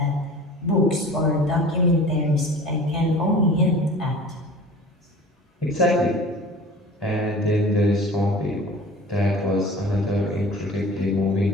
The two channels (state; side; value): normal; both; correlation 0.41